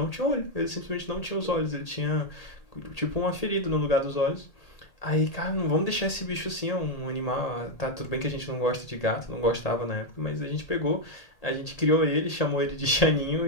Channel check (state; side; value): late; right; 1.8 ms